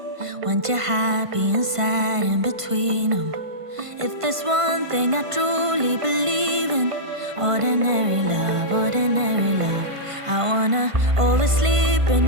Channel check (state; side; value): late; left; 1.5 ms